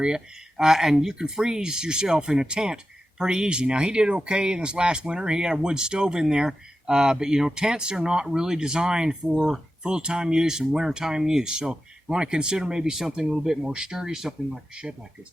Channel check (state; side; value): normal; both; correlation 0.92